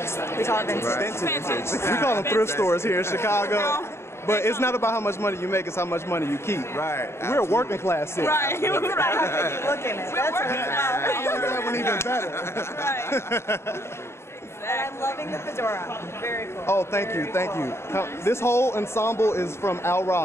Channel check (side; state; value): right; late; 0.13 ms